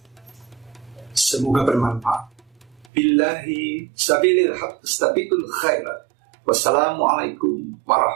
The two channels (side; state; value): left; drops out; at 2.9 s